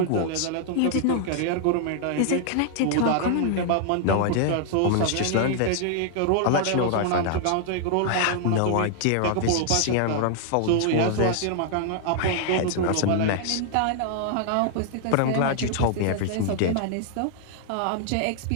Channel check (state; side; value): different; both; correlation 0.00